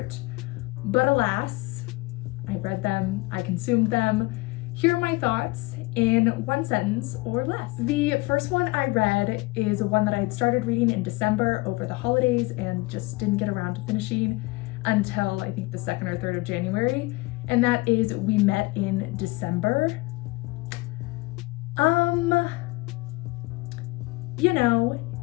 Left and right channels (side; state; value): right; quieter; 23.1 dB